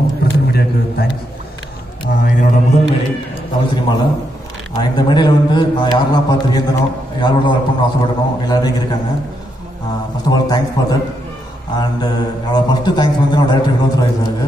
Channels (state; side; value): normal; both; correlation 0.80